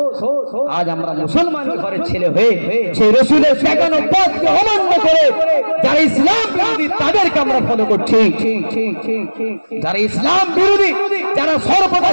আজ আমরা মুসলমান ঘরের ছেলে হয়ে সেই রাসূলের দেখানো পথকে অমান্য করে যারা ইসলাম বিরোধী তাদেরকে আমরা ফলো করছি। যারা ইসলাম বিরোধী, যারা সর্বদা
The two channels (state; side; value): inverted; both; correlation -1.00